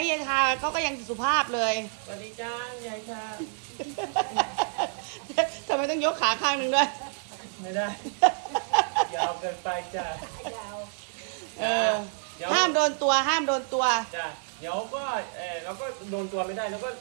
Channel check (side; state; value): left; silent; digital silence